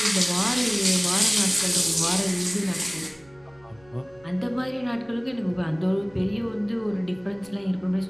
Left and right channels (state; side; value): noise; right; rumble, 29 dB below the sound